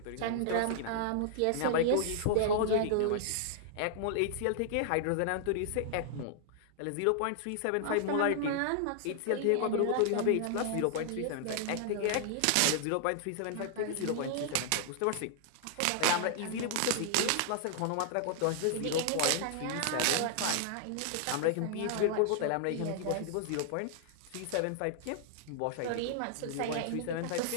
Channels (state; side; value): different; both; correlation -0.01